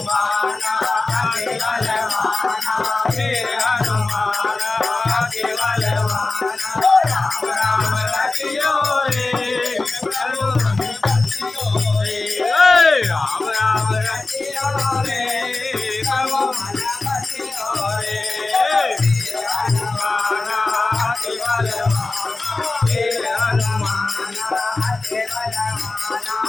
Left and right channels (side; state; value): right; quieter; 3.3 dB